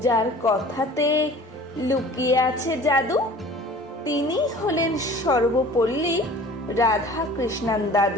যার কথাতে লুকিয়ে আছে জাদু। তিনি হলেন সর্বপল্লী রাধা কৃষ্ণান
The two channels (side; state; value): both; normal; correlation 0.45